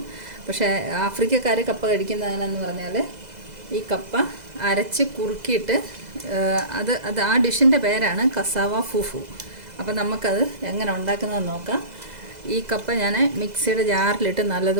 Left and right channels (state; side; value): late; left; 2.0 ms